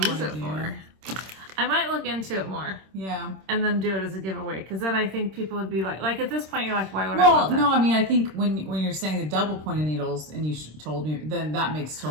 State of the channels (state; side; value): late; left; 26 ms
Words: use it for. I might look into it more. Yeah. And then do it as a giveaway. Because then I think people would be like at this point, you're like, why would I want that? No, I think when you're saying the double pointed needles and you told me, then that makes